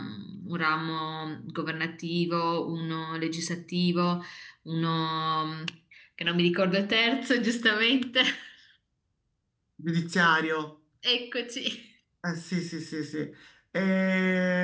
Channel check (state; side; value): identical; both; correlation 1.00